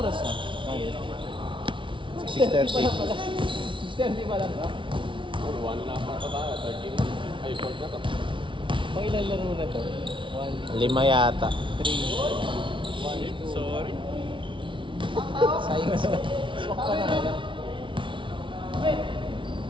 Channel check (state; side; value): late; left; 0.24 ms